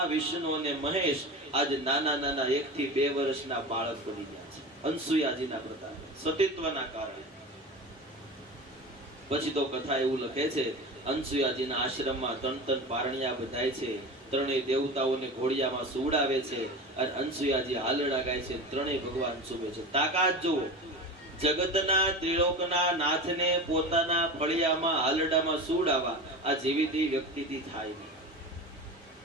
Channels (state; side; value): normal; both; correlation 0.29